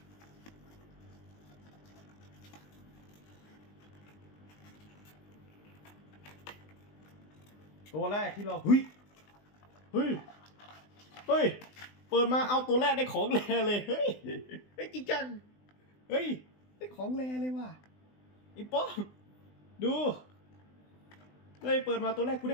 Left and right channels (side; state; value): right; late; 20 ms